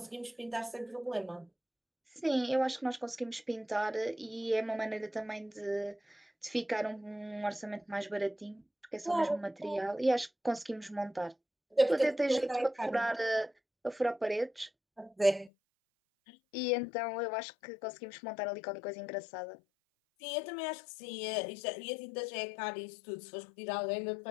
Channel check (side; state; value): right; drops out; at 15.5 s